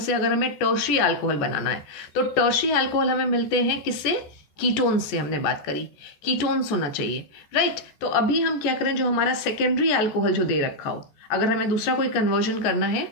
अगर हमें टर्शियरी अल्कोहल बनाना है तो टर्शियरी अल्कोहल हमें मिलते हैं किससे? कीटोन्स से। हमने बात करी कीटोन्स होना चाहिए, राइट। तो अभी हम क्या करें? जो हमारा सेकेंडरी अल्कोहल जो दे रखा हो, अगर हमें दूसरा कोई कन्वर्जन करना है,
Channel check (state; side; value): late; right; 14 ms